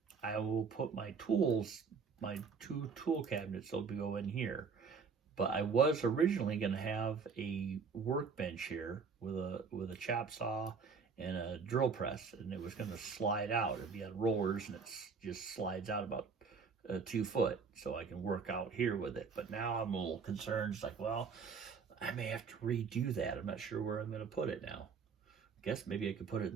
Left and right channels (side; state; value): left; quieter; 5.5 dB